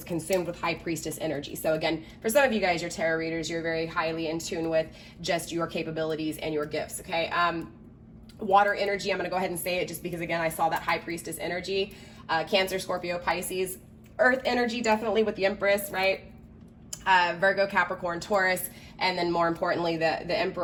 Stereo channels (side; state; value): both; identical; correlation 1.00